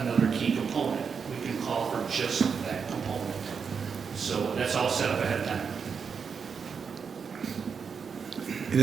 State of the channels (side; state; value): left; quieter; 6.1 dB